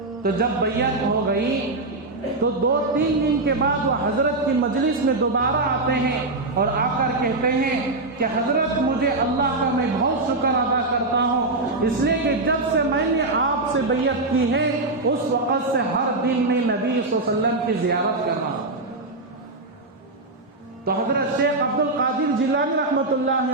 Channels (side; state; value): left; quieter; 3.1 dB